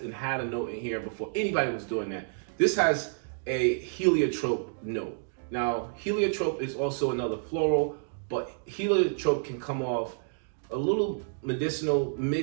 and had a note in here before anybody was doing that. This has a heliotrope note. Now, heliotrope is also another floral, but heliotrope can come off a little medicinal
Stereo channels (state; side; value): silent; left; digital silence